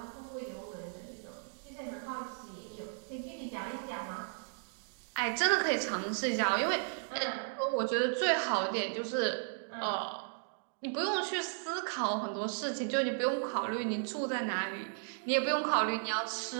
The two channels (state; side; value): silent; left; digital silence